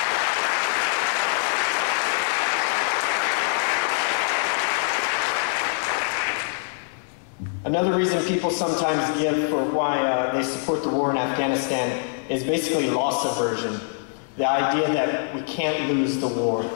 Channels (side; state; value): right; silent; digital silence